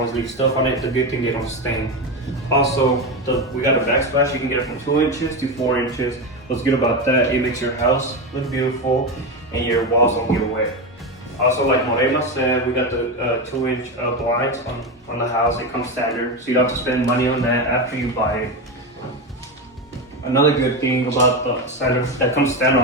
leave stuff on it. The good thing, they don't stain. Also, we got a backsplash. You can get it from 2 inches to 4 inches. What's good about that, it makes your house look beautiful and your walls don't get wet. Also, like Morena said, we got the 2-inch blinds on the house. It comes standard, so you don't have to spend money on that after you buy it. Another good thing about the standard that comes standard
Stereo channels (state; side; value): normal; both; correlation 0.16